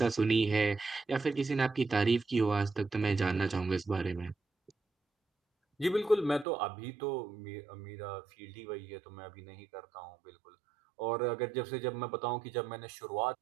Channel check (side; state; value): left; drops out; at 6.5 s